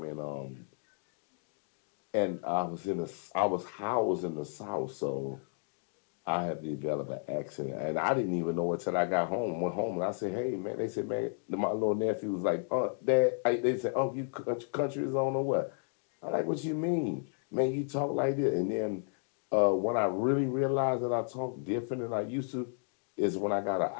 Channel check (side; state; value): right; silent; digital silence